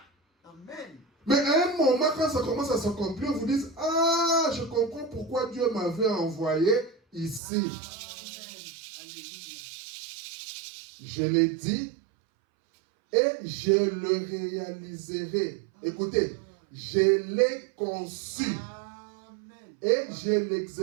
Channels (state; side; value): drops out; left; at 7.4 s